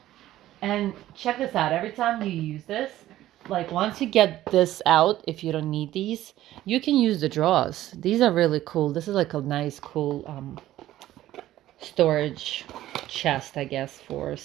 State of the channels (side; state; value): left; quieter; 14.2 dB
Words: And check this out. Every time you use this, like once you get this out, if you don't need these, you can use the drawers. These are really cool. This is like a nice, cool storage chest, I guess, for